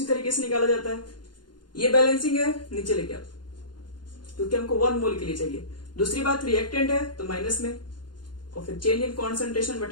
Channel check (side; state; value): right; late; 0.71 ms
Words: तरीके से निकाला जाता है। ये बैलेंसिंग है, नीचे लेके आओ, क्योंकि हमको 1 मोल के लिए चाहिए। दूसरी बात, रिएक्टेंट है तो माइनस में, और फिर चेंज इन कॉन्सेंट्रेशन